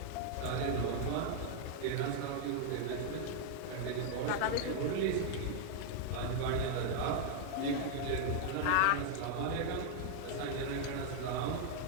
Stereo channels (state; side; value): different; both; correlation -0.01